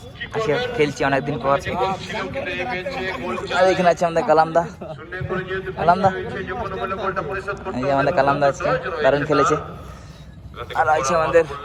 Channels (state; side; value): identical; both; correlation 1.00